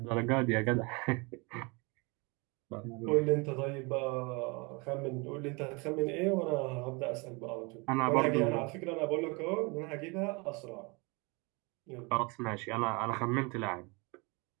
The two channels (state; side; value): quieter; left; 28.9 dB